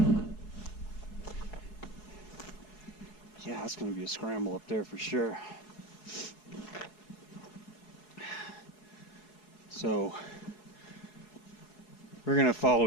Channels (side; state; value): right; late; 4.7 ms